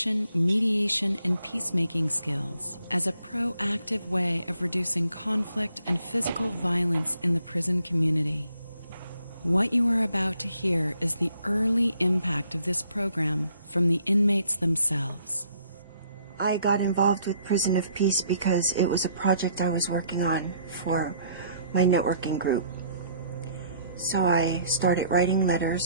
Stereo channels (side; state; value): both; inverted; correlation -0.65